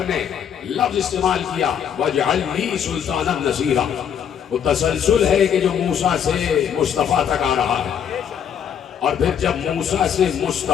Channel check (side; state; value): right; quieter; 8.4 dB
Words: ने लफ्ज इस्तेमाल किया वजअल ली सुल्तानन नसीरा। वो तसलसल है कि जो मूसा से मुस्तफ़ा तक आ रहा है, और फिर जब मूसा से